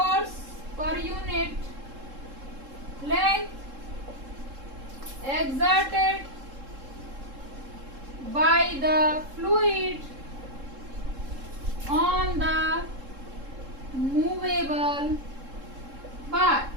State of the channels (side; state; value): left; late; 3.7 ms